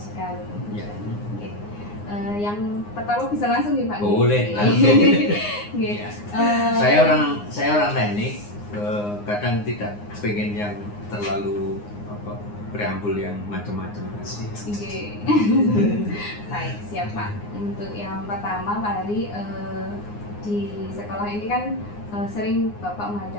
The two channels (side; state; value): right; late; 9.7 ms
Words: Ya. Oke. Yang pertama bisa langsung nih Pak? Boleh, langsung. Ya. Saya orang teknik, kadang tidak pengen yang terlalu preambul yang macam-macam. Oke. Baik, siap Pak. Untuk yang pertama Pak Hari, di sekolah ini kan sering Bapak